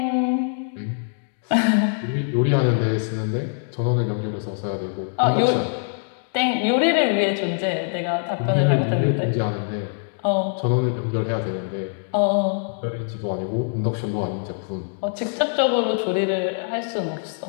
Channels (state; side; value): silent; right; digital silence